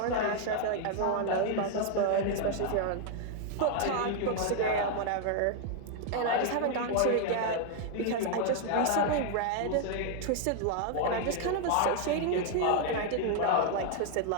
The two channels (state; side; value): different; both; correlation 0.00